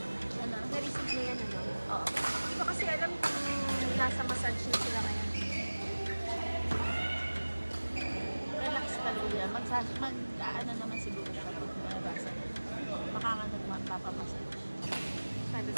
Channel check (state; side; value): inverted; both; correlation -1.00